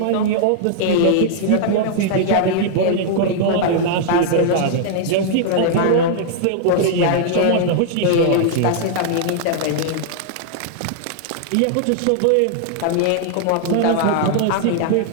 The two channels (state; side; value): different; both; correlation -0.01